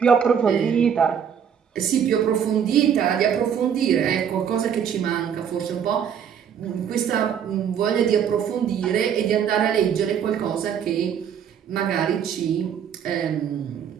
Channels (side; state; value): left; quieter; 8.1 dB